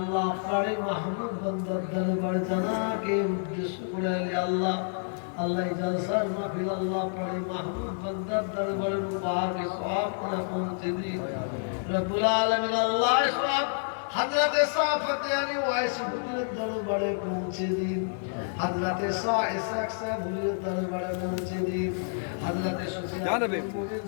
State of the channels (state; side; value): silent; right; digital silence